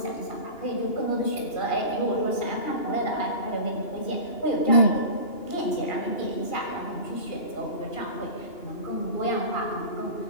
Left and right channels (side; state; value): right; late; 2.8 ms